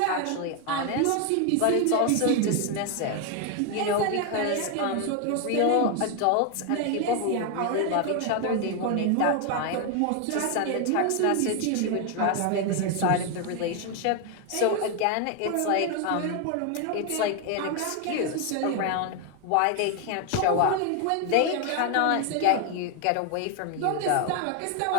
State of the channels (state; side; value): different; both; correlation 0.01